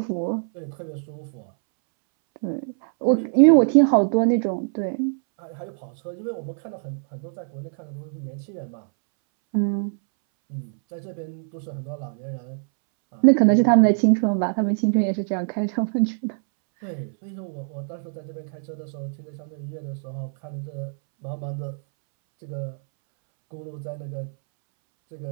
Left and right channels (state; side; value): silent; left; 62 dB below the other